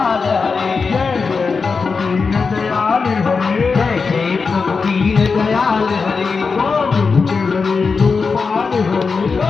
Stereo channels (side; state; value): right; quieter; 4.9 dB